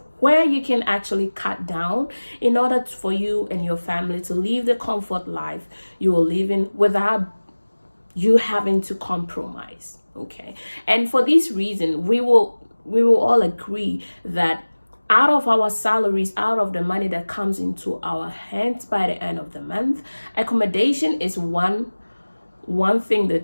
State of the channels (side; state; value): both; inverted; correlation -1.00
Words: where you can actually cut down in order for you and your family to live the comfort life you are living without you having to compromise. Okay. And for this reason, we will all agree that out of our salaries, out of the money that comes into our hands by the end of the month, accommodation is one thing